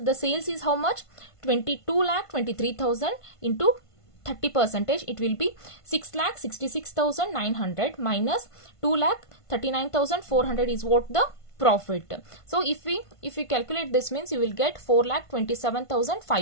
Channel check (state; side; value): late; right; 1.5 ms